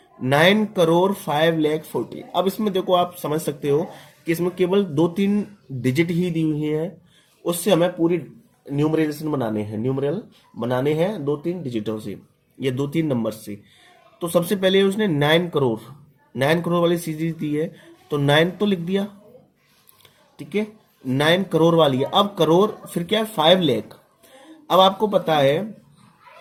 9 crore 5 lakh 40। अब इसमें देखो आप समझ सकते हो कि इसमें केवल 2-3 डिजिट ही दी हुई है, उससे हमें पूरी न्यूमरल बनाने हैं 2-3 डिजिटों से, ये 2-3 नंबर से। तो सबसे पहले उसने 9 करोड़ वाली सीरीज दी है, तो 9 तो लिख दिया, ठीक है। 9 करोड़ वाली है, अब करोड़ फिर क्या है 5 लाख। अब आपको पता है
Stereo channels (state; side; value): identical; both; correlation 1.00